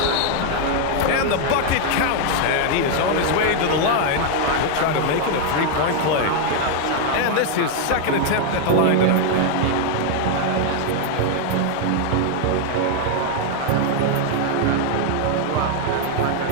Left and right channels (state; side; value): different; both; correlation 0.00